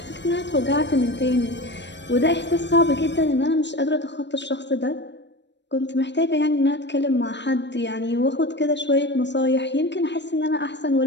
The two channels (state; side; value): late; right; 0.52 ms